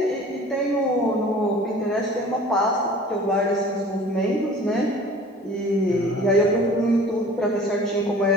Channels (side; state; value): both; normal; correlation 0.46